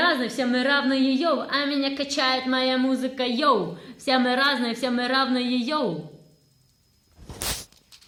все мы равные, йоу. А меня качает моя музыка, йоу. Все мы разные, все мы равные, йоу.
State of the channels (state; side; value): identical; both; correlation 1.00